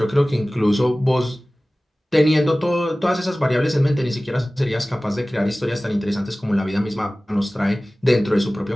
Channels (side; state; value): both; normal; correlation 0.98